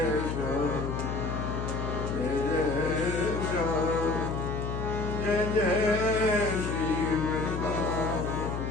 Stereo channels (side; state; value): left; noise; hum, 3 dB below the sound